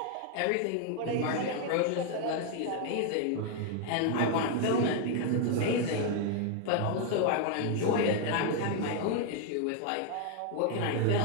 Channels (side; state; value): both; different; correlation 0.00